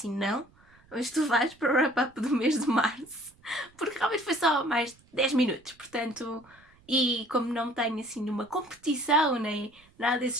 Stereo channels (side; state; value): right; noise; rumble, 30 dB below the sound